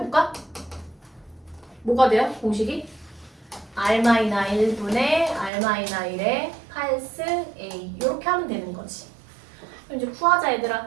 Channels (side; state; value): left; drops out; at 5.5 s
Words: 뭐가 돼요? 공식이? R-1분의 R-1의 8승 A 이렇게 하면 되는 거지. 그럼 이제 구하자